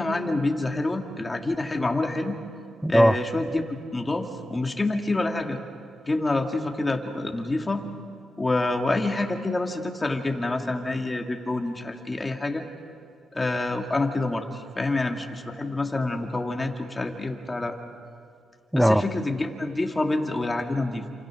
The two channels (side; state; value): both; normal; correlation 0.94